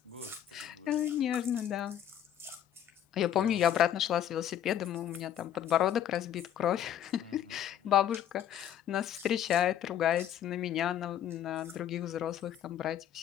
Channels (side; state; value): right; quieter; 10.4 dB